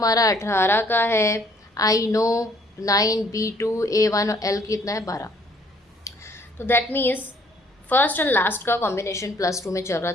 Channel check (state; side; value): normal; both; correlation 0.62